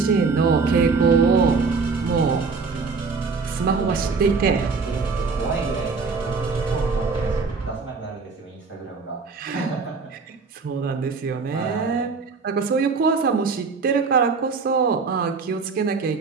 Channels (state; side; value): quieter; left; 4.6 dB